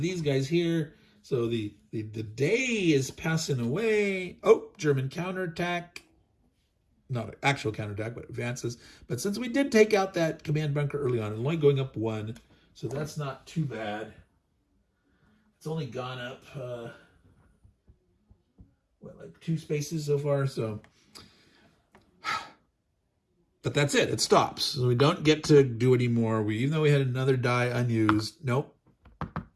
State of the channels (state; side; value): identical; both; correlation 1.00